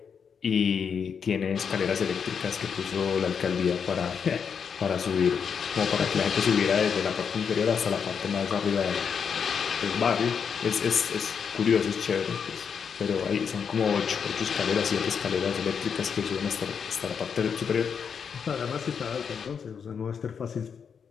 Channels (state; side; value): quieter; right; 6.7 dB